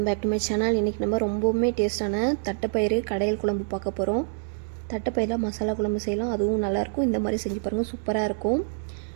back to my channel. இன்றைக்கி நம்ம ரொம்பவுமே டேஸ்ட்டான தட்டைப்பயிறு கடையல் குழம்பு பார்க்க போகிறோம். தட்டைப்பயிரில் மசாலா குழம்பு செய்யலாம், அதுவும் நல்லாயிருக்கும். இந்த மாதிரி செஞ்சு பாருங்கள், சூப்பராக இருக்கும்.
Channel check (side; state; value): left; silent; digital silence